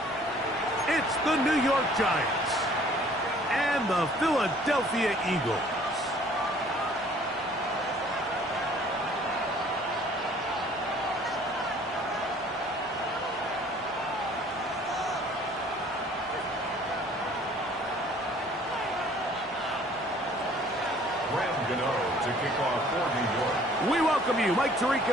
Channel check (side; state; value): both; normal; correlation 0.55